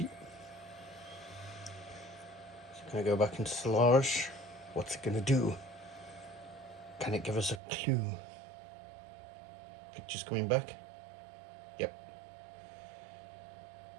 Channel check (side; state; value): left; drops out; at 7.6 s